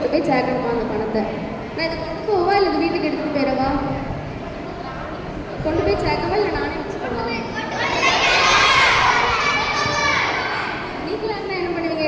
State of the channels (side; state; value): both; identical; correlation 1.00